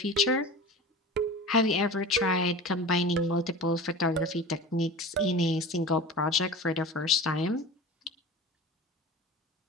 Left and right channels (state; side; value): normal; both; correlation 0.34